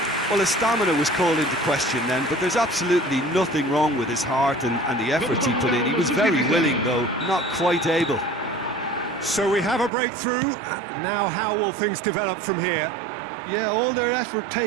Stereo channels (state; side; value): drops out; left; at 9.9 s